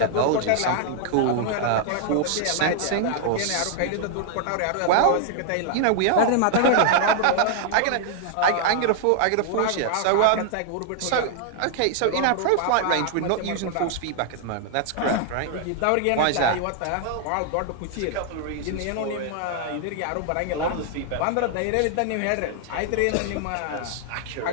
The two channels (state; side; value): different; both; correlation 0.00